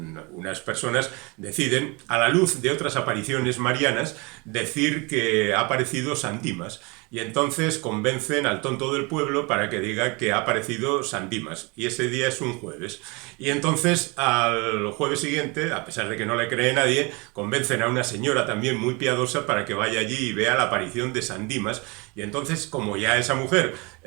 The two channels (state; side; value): quieter; left; 28.0 dB